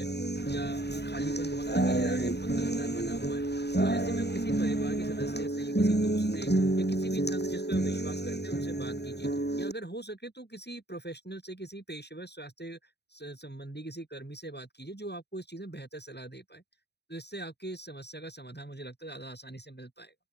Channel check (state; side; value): late; right; 0.49 ms